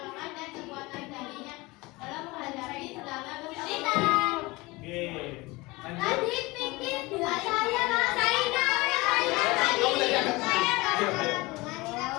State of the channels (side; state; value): right; quieter; 22.6 dB